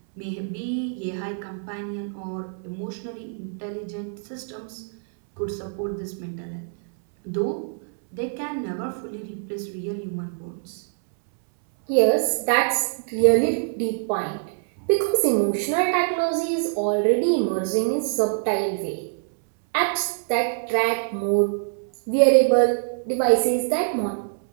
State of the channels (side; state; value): left; silent; 62 dB below the other